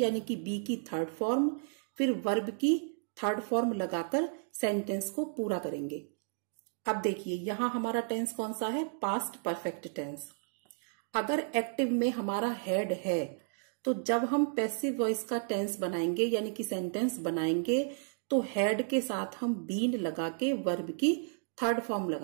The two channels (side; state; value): left; silent; 56 dB below the other